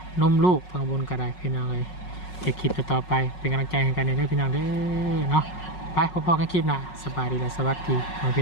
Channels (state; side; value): late; right; 5.4 ms